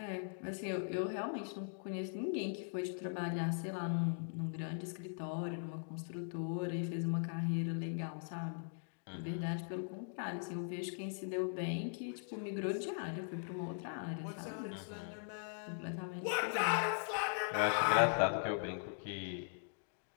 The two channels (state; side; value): silent; right; digital silence